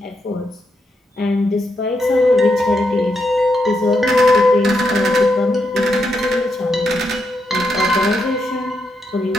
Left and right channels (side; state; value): both; normal; correlation 0.82